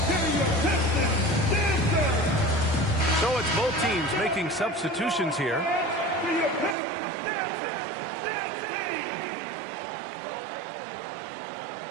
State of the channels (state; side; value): drops out; left; at 6.8 s